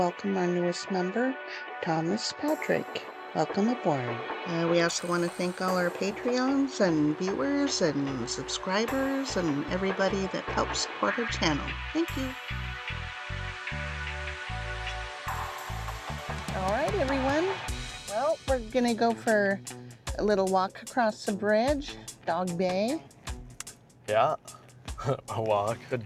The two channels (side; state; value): both; identical; correlation 1.00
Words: our newest member, Thomas Patrick. Welcome aboard. We also want to thank all our Patreons and viewers and subscribers and everybody that helps support our channel. Thank you. All right, everyone. Well, we're going to go for a little walk across the bridge, Dog Bay. Yeah, a walk, a